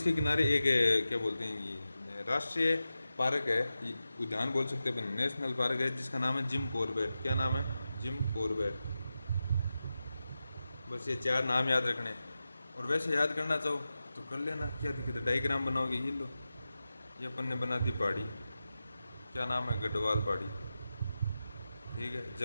किनारे एक क्या बोलते हैं, ये राष्ट्रीय पार्क है, उद्यान बोल सकते हैं, नेशनल पार्क है, जिसका नाम है जिम कॉर्बेट। क्या नाम है? Jim Corbett. बस ये 4 नाम याद रखने। और वैसे याद करना चाहो तो कर लेना, क्या दिक्कत है? डायग्राम बनाओगे, ये लो, ये अपन ने बना दी पहाड़ी। क्या नाम है? गढ़वाल पहाड़ी। ठीक है,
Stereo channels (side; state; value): both; inverted; correlation -0.92